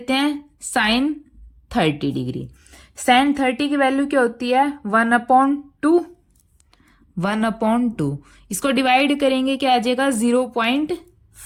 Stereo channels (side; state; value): both; identical; correlation 1.00